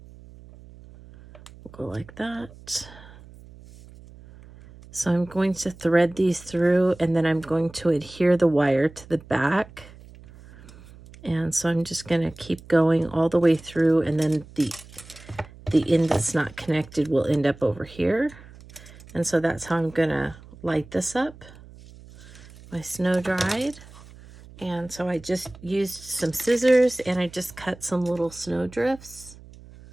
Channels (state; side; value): noise; right; hum, 20 dB below the sound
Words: will go like that. So I'm going to thread these through, and then I'm going to adhere the wire to the back. And so I'm just going to keep going all the way through, and then the end that's not connected will end up over here. And so that's how I'm going to light this up. My snow dried. And so I just used some scissors and I just cut some little snow drifts.